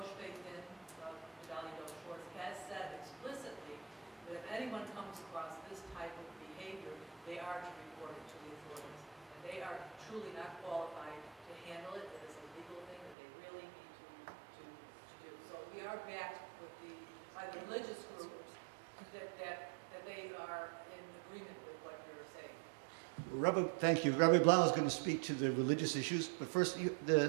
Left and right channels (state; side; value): drops out; left; at 13.2 s